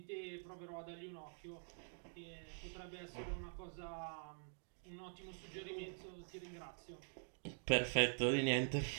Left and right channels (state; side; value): silent; left; digital silence